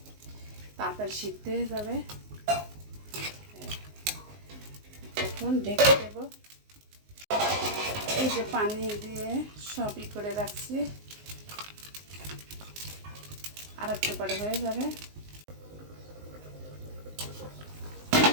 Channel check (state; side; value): late; left; 19 ms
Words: তাড়াতাড়ি সিদ্ধ হয়ে যাবে। এখন ঢেকে দেব। এই যে পানি দিয়ে সবই করে রাখছি, আর একটু পরে হয়ে যাবে।